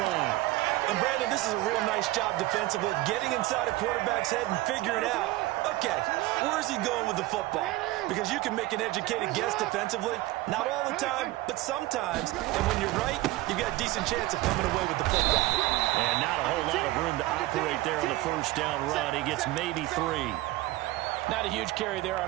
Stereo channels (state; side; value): quieter; left; 18.2 dB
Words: And, Brandon, this is a real nice job defensively of getting inside a quarterback's head and figuring out, okay, where's he going with the football? Because you can make an educated guess defensively. Not all the time, but sometimes. And when you're right, you've got a decent chance of coming away with the football. And not a whole lot of room to operate there on the first down run. He gets maybe 3. Not a huge carry there on